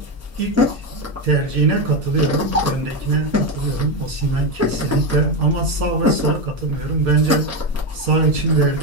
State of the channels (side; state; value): both; normal; correlation 0.12